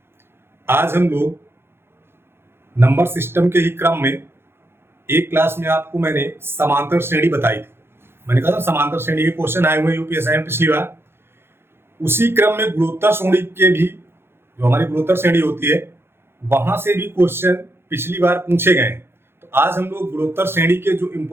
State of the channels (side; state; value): left; late; 0.11 ms